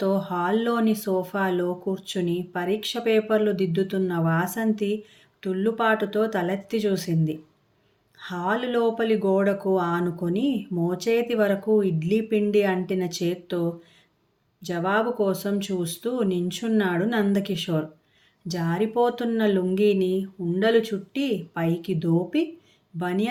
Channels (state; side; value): identical; both; correlation 1.00